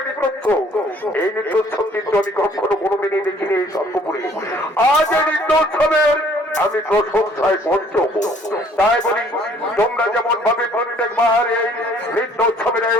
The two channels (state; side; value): normal; both; correlation 0.58